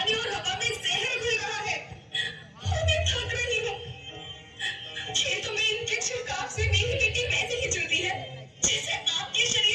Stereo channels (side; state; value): both; identical; correlation 1.00